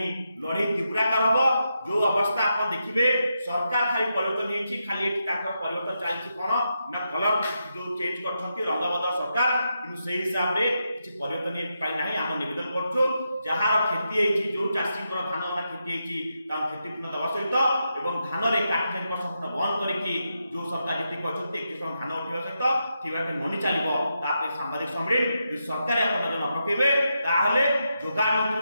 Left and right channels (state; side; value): inverted; both; correlation -0.85